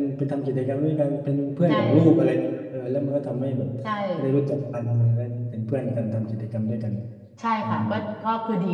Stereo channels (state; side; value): identical; both; correlation 1.00